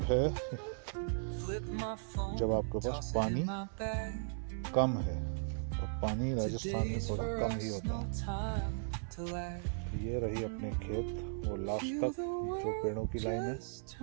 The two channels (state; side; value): silent; left; 53 dB below the other